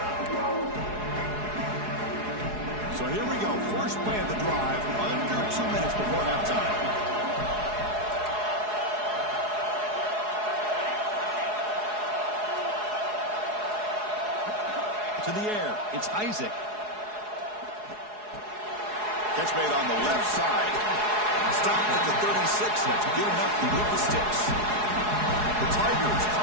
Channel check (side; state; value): left; late; 4.7 ms